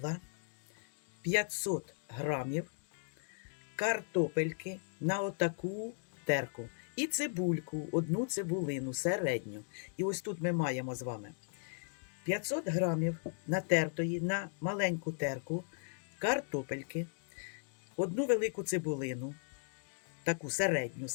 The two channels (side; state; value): right; silent; digital silence